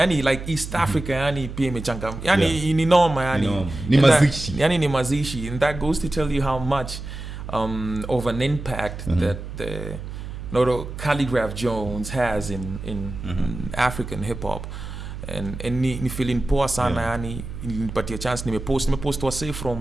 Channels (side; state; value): right; noise; hum, 9 dB below the sound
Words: like East Africa, yani pia imechanga, yani ni noma, yani ni mazishi, yani ni mazishi, and that goes to tell you how much of an impact that the Khaligraph Jones has in African hip hop, and ni feeling poa sana, yani nilipatia chance, nimepost wase